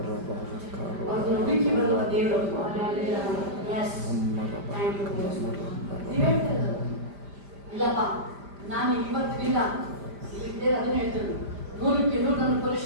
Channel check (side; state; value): left; late; 5.0 ms